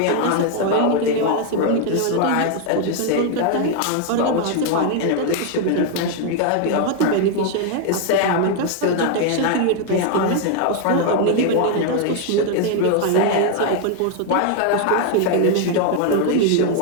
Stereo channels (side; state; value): both; different; correlation 0.00